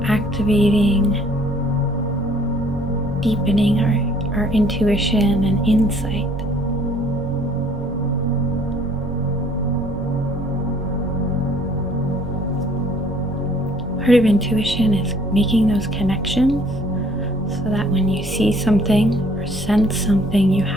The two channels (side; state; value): both; normal; correlation 0.59